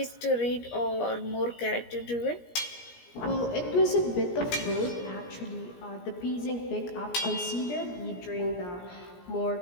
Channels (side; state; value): right; late; 17 ms